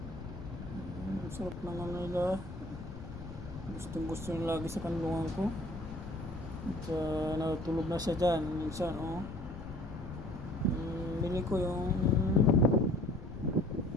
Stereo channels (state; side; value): noise; left; rumble, 10 dB below the sound